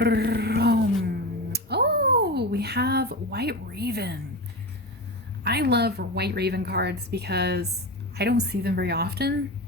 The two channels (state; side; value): normal; both; correlation 0.23